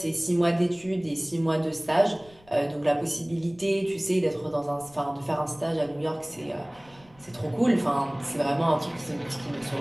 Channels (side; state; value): left; noise; rumble, 27 dB below the sound